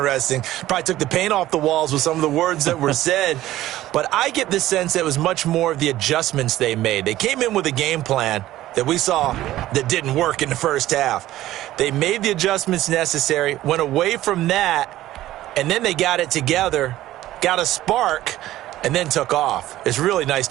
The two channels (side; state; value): left; quieter; 14.8 dB